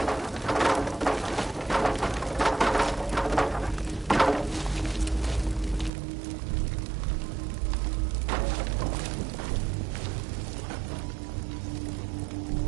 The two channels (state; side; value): drops out; left; at 5.9 s